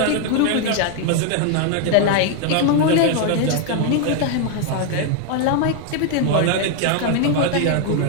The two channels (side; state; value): both; different; correlation 0.00